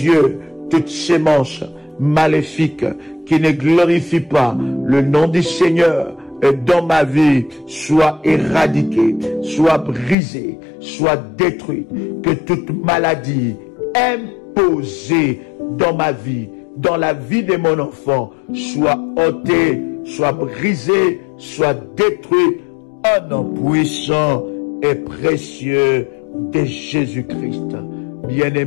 toute sémence maléfique qui ne glorifie pas le nom du Seigneur dans ma vie soit éradiquée, soit brisée, soit détruite. Que toute maladie imposée dans ma vie, dans la vie de mon enfant, soit ôtée, soit brisée, soit détruite au nom puissant et précieux de Jésus-Christ.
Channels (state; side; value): drops out; right; at 10.2 s